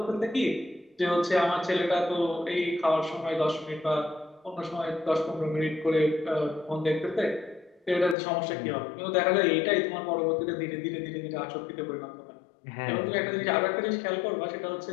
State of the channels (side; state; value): right; drops out; at 8.2 s